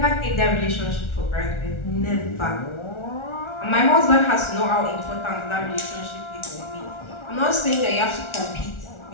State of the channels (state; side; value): late; right; 1.4 ms